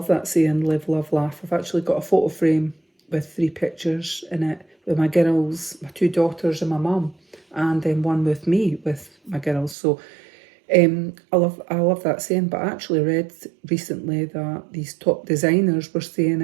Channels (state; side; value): drops out; left; at 9.8 s